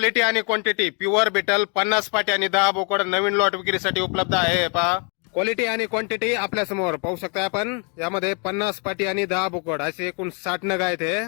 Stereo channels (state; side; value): quieter; right; 36.6 dB